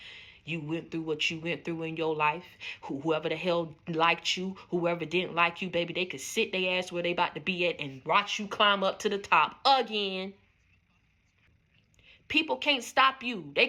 You went through what you went through in your life. Whoever the hell liked you, whoever didn't like you, baby, they could sit their ass where they about to be at and watch you climb up to the top again. People can't stop you. They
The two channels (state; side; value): identical; both; correlation 1.00